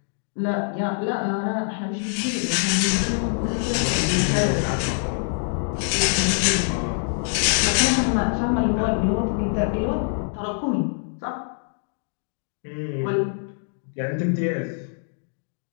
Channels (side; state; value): right; silent; 62 dB below the other